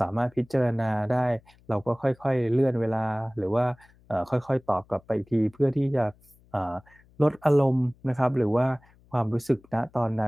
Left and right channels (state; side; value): noise; left; hum, 29 dB below the sound